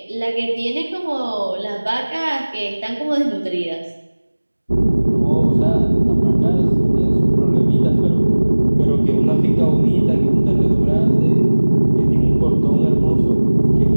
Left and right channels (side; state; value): both; inverted; correlation -1.00